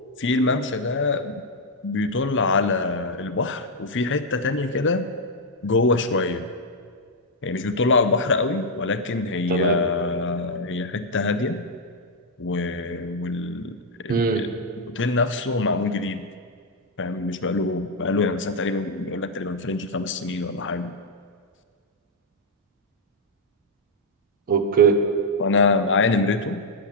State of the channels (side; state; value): both; normal; correlation -0.02